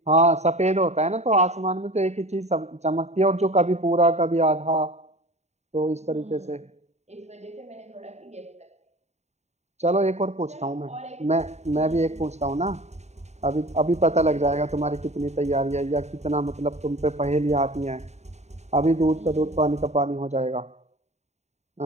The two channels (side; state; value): left; late; 0.32 ms